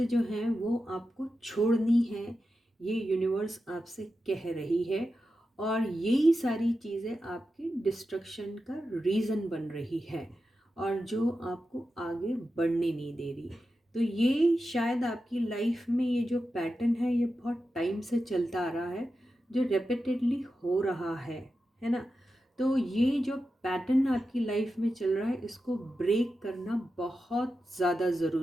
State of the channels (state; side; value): normal; both; correlation 0.91